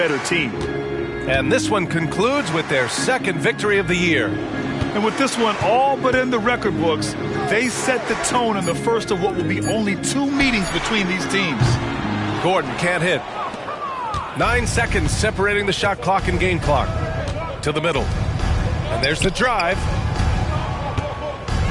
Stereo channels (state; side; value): identical; both; correlation 1.00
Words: team. And this one concludes with their second victory of the year. And with this one all but in the record books, they set the tone in the first of what will be only 2 meetings between these teams. Gordon can't hit. 9 seconds separating the shot clock and game clock. To the middle. And there's the drive.